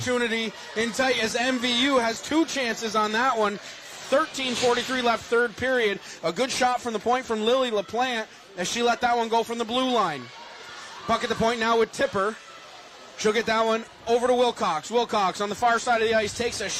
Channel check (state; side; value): identical; both; correlation 1.00